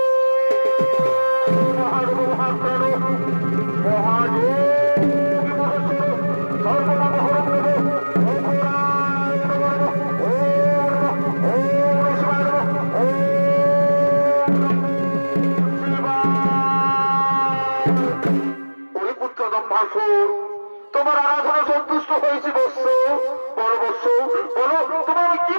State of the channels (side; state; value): both; inverted; correlation -1.00